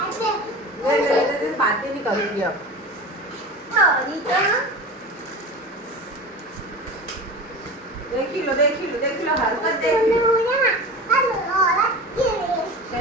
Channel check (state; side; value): normal; both; correlation 0.32